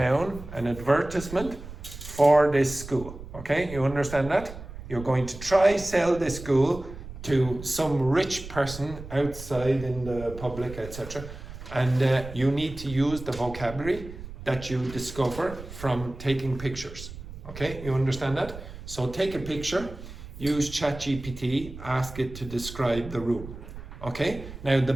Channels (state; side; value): noise; right; rumble, 13 dB below the sound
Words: an advertisement for this school. Okay? You understand that? You're going to try sell this school to some rich person outside in the public, etc. And you need to use the vocabulary that you discover from taking pictures. Okay, you understand that? So take a picture, use ChatGPT, ask it to describe the room. Okay, now the